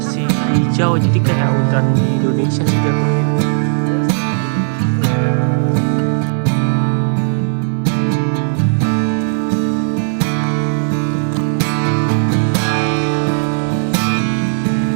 hijau, jadi kayak hutan di Indonesia sih jatuhnya.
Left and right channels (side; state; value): left; silent; 67 dB below the other